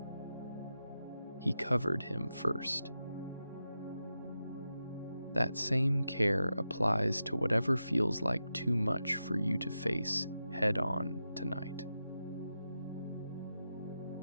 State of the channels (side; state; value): both; inverted; correlation -0.90